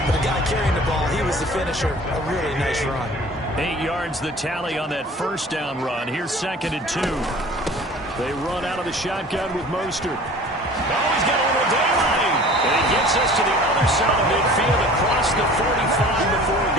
but the guy carrying the ball, he was the finisher. A really nice run. 8 yards the tally on that 1st down run. Here's 2nd and 2. They run out of the shotgun with Mostert. Oh, he's got a little daylight. And he gets us to the other side of midfield across the 45 before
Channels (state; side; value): normal; both; correlation 0.45